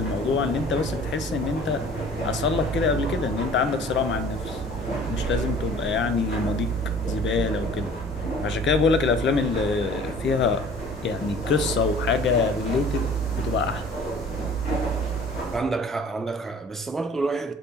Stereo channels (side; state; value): both; normal; correlation 0.49